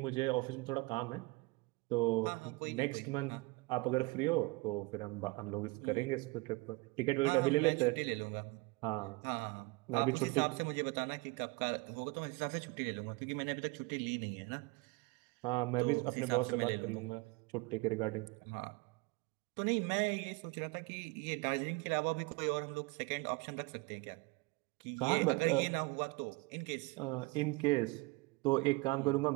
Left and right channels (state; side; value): quieter; left; 25.7 dB